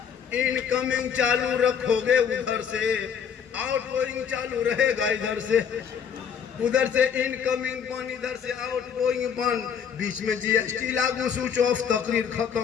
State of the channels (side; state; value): right; quieter; 7.6 dB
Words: इनकमिंग चालू रखोगे उधर से, आउटगोइंग चालू रहेगा इधर से। उधर से इनकमिंग बंद, इधर से आउटगोइंग बंद, बीच में जीएसटी लागू, स्विच ऑफ, तकरीर खत्म।